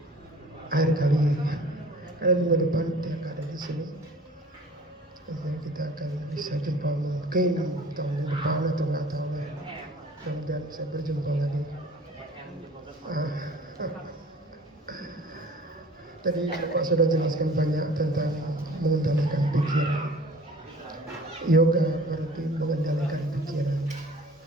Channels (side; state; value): both; normal; correlation 0.47